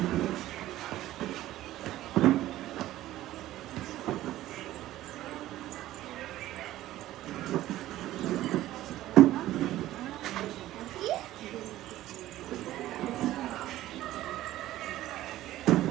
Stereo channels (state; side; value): quieter; left; 14.8 dB